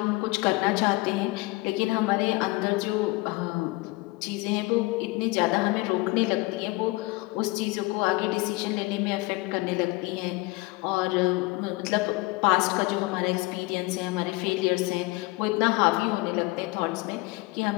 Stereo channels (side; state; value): right; quieter; 22.9 dB